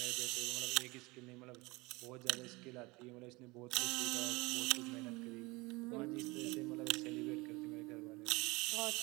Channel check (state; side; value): quieter; left; 23.8 dB